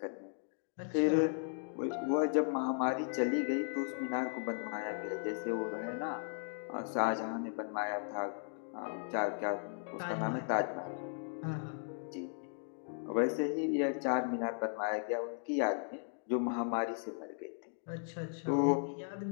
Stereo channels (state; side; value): silent; right; digital silence